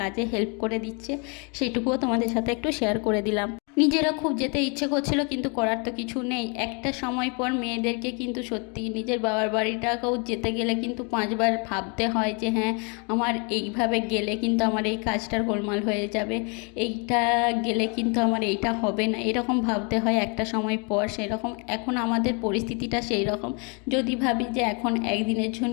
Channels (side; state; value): right; quieter; 34.1 dB